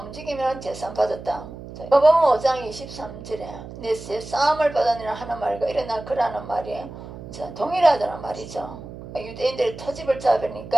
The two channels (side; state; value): right; noise; hum, 13 dB below the sound